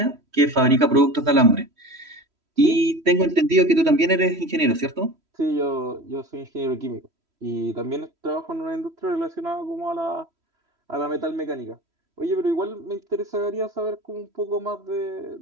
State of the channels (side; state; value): left; late; 3.1 ms